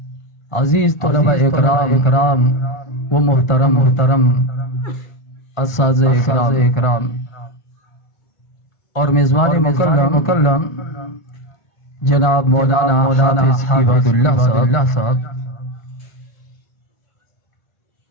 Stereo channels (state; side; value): late; right; 1.4 ms